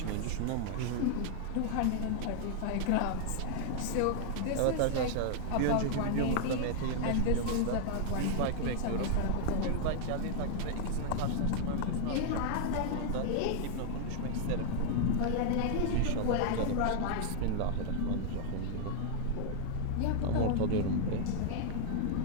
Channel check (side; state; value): both; different; correlation 0.00